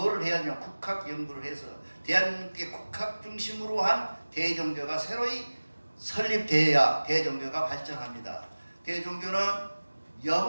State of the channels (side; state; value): both; inverted; correlation -1.00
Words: 해야 하냐? 국학 연구를 해서 대한민국의 국학 중심으로 한 대종교가 새로이 설립되어야 대종교가 발전합니다. 대종교는